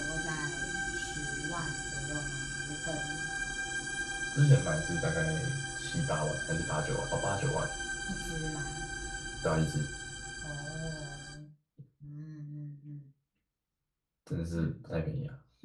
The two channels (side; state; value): both; identical; correlation 1.00